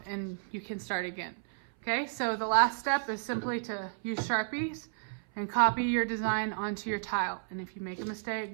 and you can start again. Okay, so the last step is simply to use Sharpies and copy your design onto your tile. And if you make a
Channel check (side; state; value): left; silent; 56 dB below the other